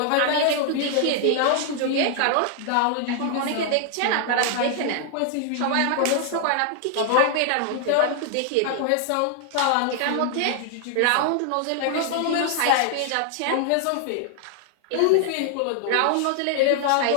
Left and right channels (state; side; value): different; both; correlation 0.00